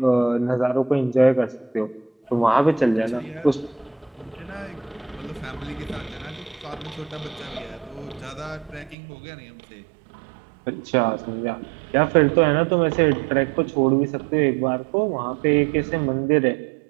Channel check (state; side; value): drops out; left; at 9.0 s